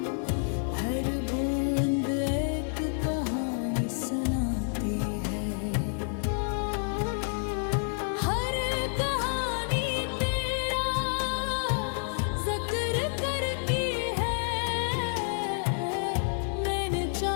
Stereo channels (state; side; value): silent; right; digital silence